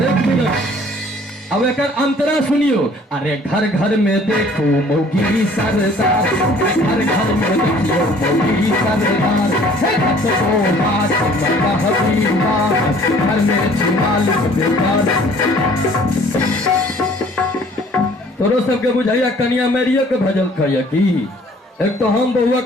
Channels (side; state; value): both; normal; correlation 0.55